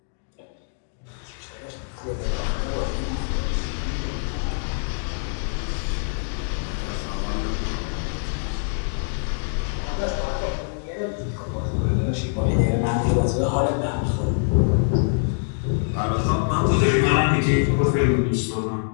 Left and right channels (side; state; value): right; silent; digital silence